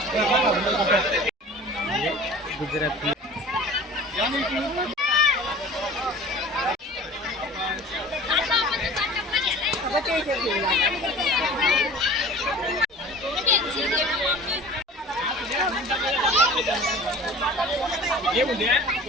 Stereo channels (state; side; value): normal; both; correlation 0.43